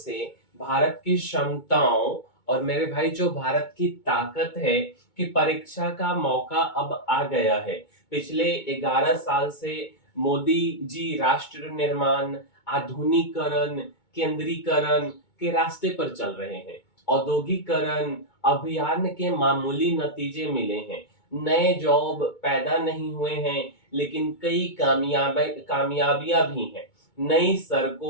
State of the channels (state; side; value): late; right; 2.2 ms